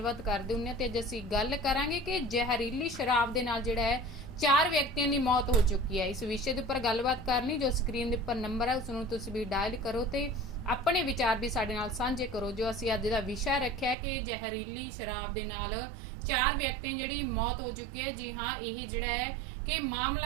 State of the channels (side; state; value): left; drops out; at 14.0 s